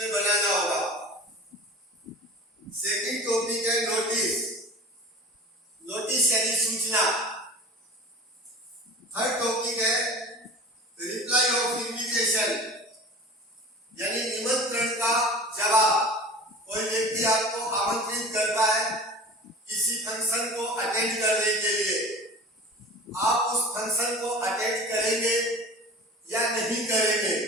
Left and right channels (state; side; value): normal; both; correlation 0.38